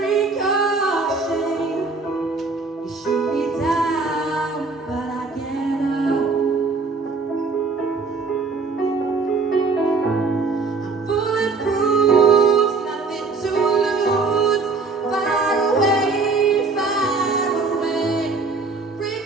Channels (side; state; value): left; quieter; 4.1 dB